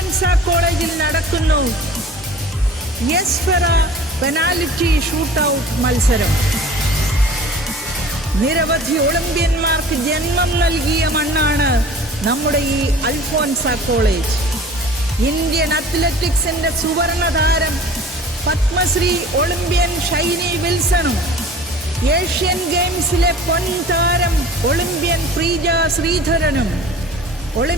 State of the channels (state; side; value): normal; both; correlation 0.44